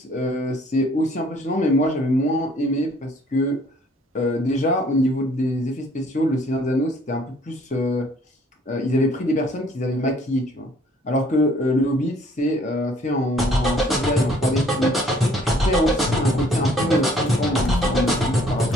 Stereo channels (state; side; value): normal; both; correlation 0.59